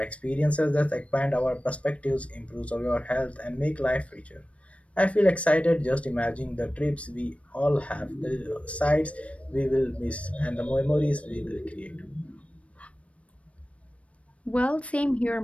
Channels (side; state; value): right; late; 0.063 ms